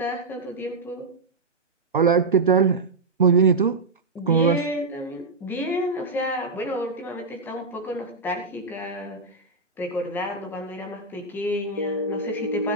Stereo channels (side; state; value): left; quieter; 3.6 dB